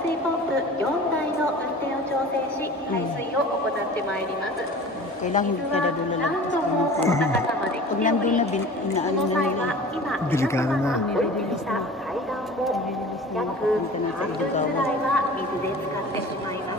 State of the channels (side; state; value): both; normal; correlation 0.40